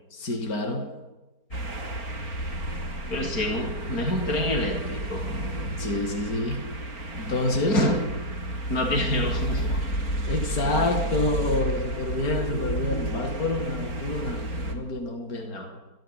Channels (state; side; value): late; right; 4.4 ms